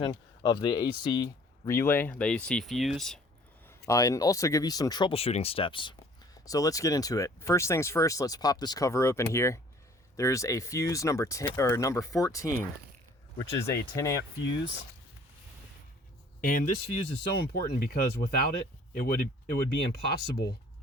of the AC relay, the AC fuse, and also give you some troubleshooting steps. So let's get into it. First things first, let's pop this cover open here. There's a fuse number 10 or number 14, which is a 10 amp fuse. And this fuse is so important because without it, it would be impossible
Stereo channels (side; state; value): both; normal; correlation 0.54